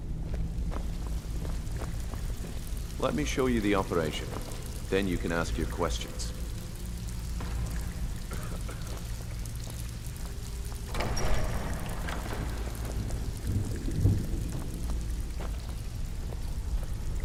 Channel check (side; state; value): both; identical; correlation 1.00